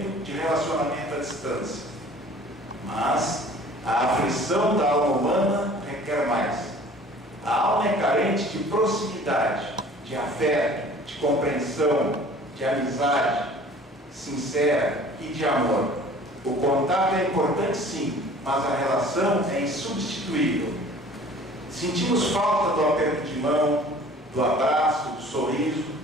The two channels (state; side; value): normal; both; correlation 0.48